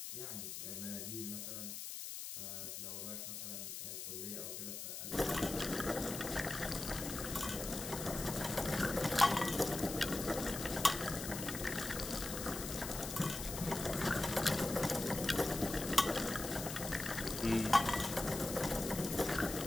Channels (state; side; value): noise; left; hiss, 7 dB below the sound